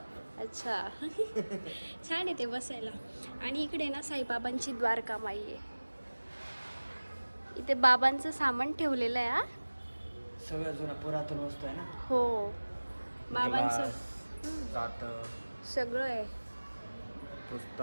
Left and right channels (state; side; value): inverted; both; correlation -1.00